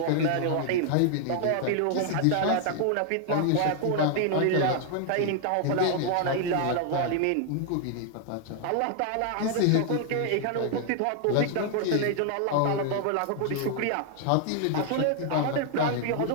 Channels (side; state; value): both; different; correlation 0.00